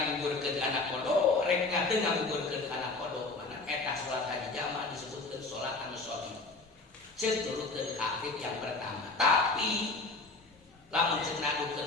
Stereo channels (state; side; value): quieter; right; 3.5 dB